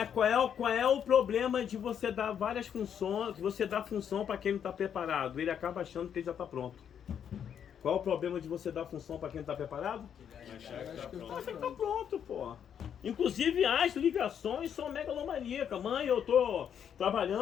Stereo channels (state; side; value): quieter; right; 8.5 dB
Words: qual é o problema de você dar várias funções, você dar função para quem não está preparado? Ele acaba achando que ele já está pronto. Qual é o problema de você dar função para quem não está preparado? Acha que está pronto, pô. Inclusive as ligações são megalomaníacas. Mãe, eu tô